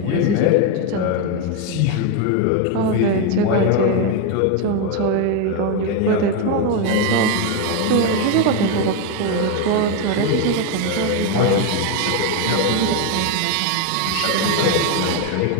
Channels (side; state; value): both; different; correlation 0.02